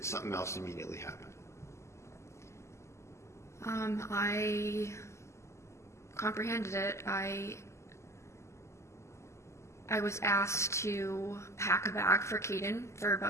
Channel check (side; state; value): right; late; 0.13 ms